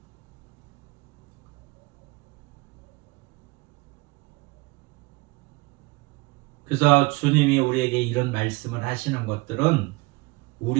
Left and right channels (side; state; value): left; quieter; 24.3 dB